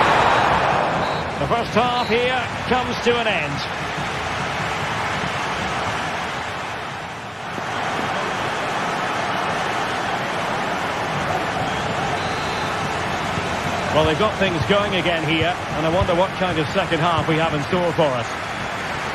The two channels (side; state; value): both; identical; correlation 1.00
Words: The first half here comes to an end. Well, they've got things going again here, and I wonder what kind of second half we have in store for us.